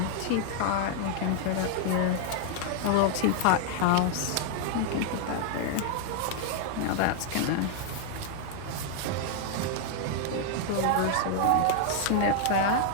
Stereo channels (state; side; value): different; both; correlation 0.00